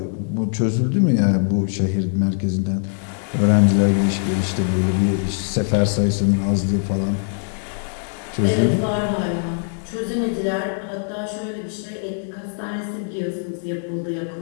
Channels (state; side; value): silent; right; digital silence